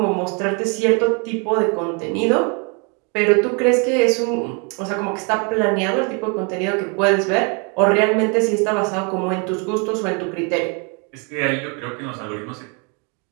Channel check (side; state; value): left; quieter; 34.6 dB